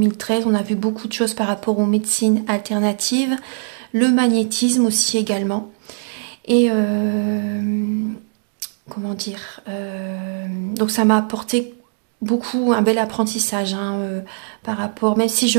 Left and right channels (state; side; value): silent; left; digital silence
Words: On a vu beaucoup de choses par rapport aux médecines alternatives, le magnétisme aussi également. Et comment dire, donc ça m'a apporté beaucoup un bel apprentissage, hein, par rapport, même si je